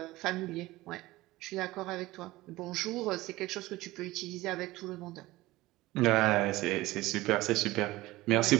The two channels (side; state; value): left; quieter; 18.6 dB